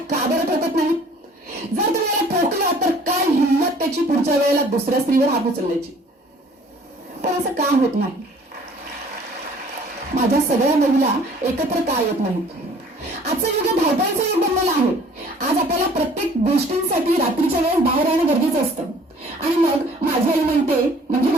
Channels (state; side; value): normal; both; correlation 0.53